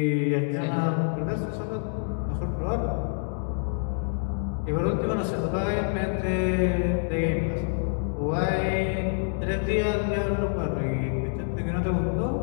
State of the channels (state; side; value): silent; right; digital silence